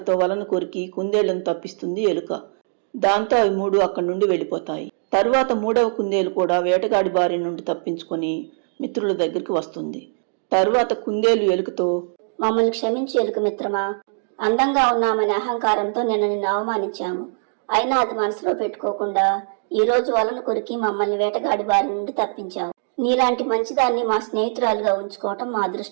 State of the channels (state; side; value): silent; left; digital silence